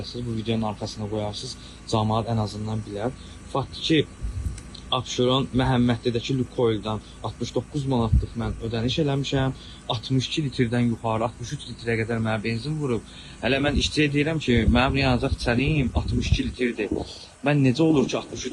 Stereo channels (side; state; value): both; identical; correlation 1.00